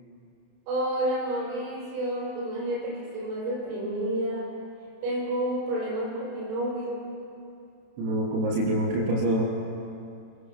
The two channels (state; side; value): late; left; 32 ms